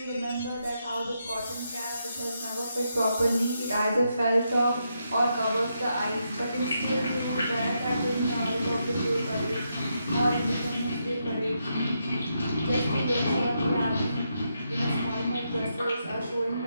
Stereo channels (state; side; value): inverted; both; correlation -0.82